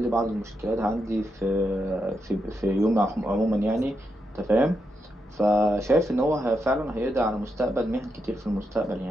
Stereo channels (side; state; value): both; normal; correlation 0.84